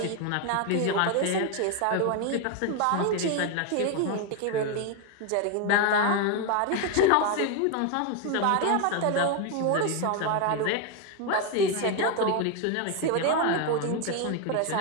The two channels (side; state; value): both; different; correlation 0.01